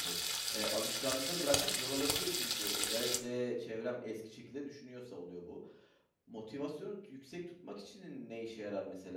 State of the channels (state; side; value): identical; both; correlation 1.00